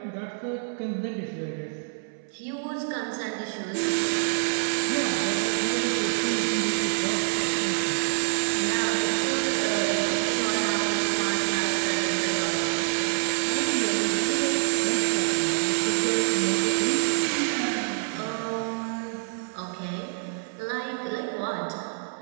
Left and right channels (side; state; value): left; silent; 59 dB below the other